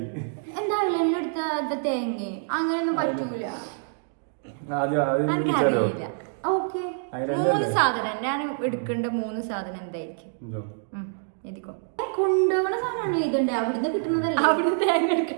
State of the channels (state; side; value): silent; left; digital silence